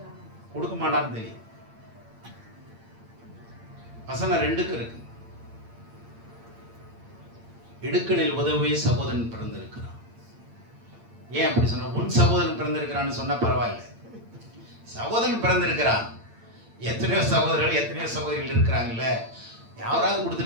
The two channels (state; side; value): late; left; 8.7 ms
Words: கொடுக்க மாட்டான்னு தெரியும். வசனம் 2க்கு இருக்கு. இடுக்கணில் உதவே சகோதரன் பிறந்திருக்கிறான். ஏன் அப்படி சொன்ன? உன் சகோதரன் பிறந்திருக்கிறான்னு சொன்னா பரவாயில்ல, சகோதரன் பிறந்திருக்கிறான். எத்தனையோ சகோதரர்கள் எத்தனையோ சகோதரிகள் இருக்கிறாங்கல்ல, யாராவது